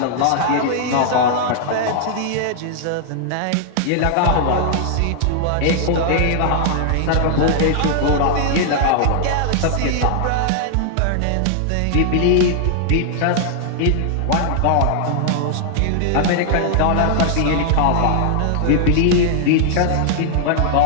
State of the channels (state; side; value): different; both; correlation 0.00